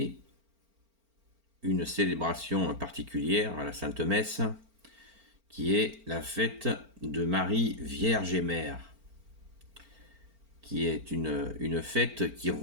une célébration particulière à la Sainte Messe, qui est la fête de Marie Vierge et Mère, qui est une fête qui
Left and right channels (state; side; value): late; left; 4.4 ms